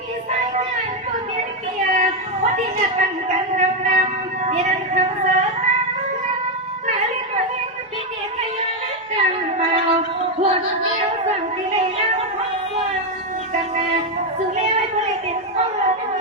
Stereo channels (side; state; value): both; normal; correlation 0.05